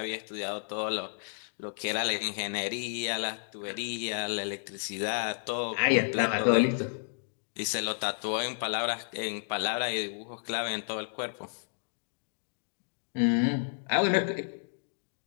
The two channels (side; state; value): right; silent; digital silence